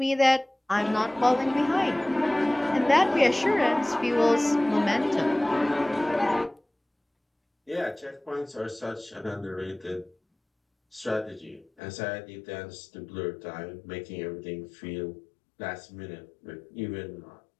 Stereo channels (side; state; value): right; drops out; at 11.7 s